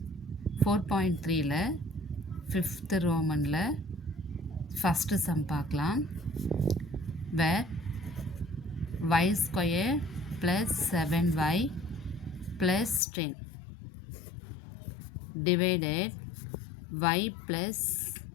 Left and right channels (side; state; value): right; drops out; at 13.0 s